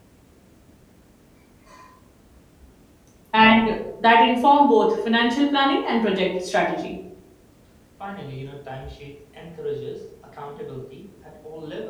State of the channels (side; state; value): both; identical; correlation 1.00